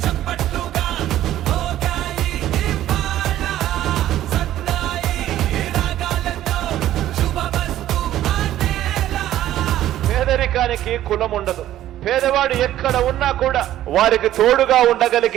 పేదరికానికి కులం ఉండదు. పేదవాడు ఎక్కడ ఉన్నా కూడా వారికి తోడుగా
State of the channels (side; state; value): left; quieter; 13.0 dB